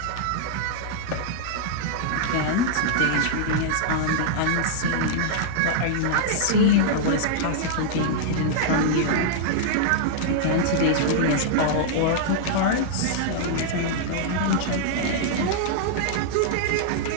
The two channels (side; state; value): both; different; correlation -0.01